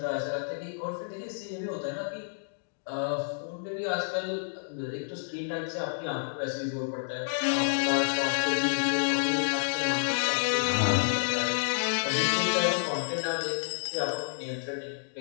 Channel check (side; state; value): right; silent; digital silence